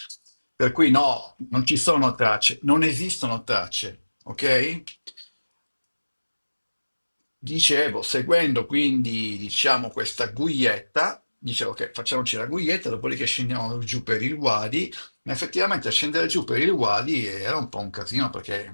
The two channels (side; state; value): both; inverted; correlation -1.00